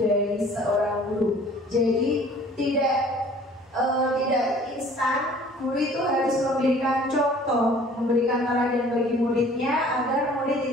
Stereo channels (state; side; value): normal; both; correlation 0.51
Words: seorang guru. Jadi tidak instan. Guru itu harus memberikan contoh, memberikan teladan bagi muridnya agar